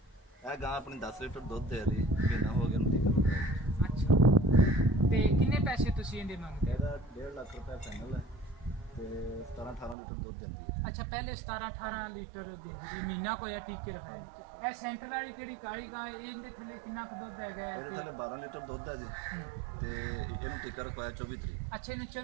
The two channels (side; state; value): left; drops out; at 10.0 s